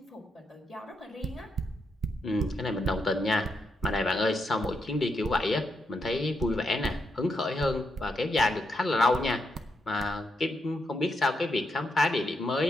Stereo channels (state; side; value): normal; both; correlation 0.82